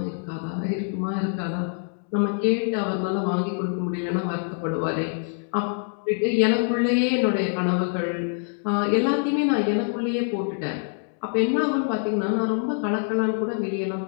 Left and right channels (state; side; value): silent; right; 58 dB below the other